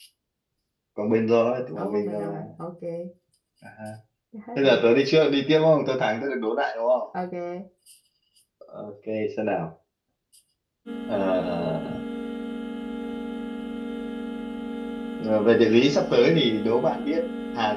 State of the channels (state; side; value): identical; both; correlation 1.00